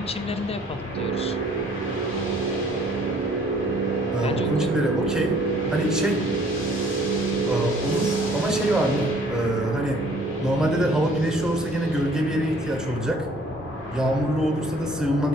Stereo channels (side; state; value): both; normal; correlation 0.58